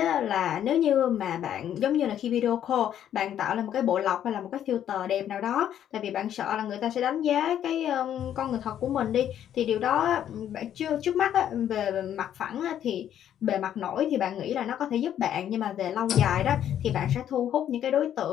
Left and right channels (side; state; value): right; quieter; 10.4 dB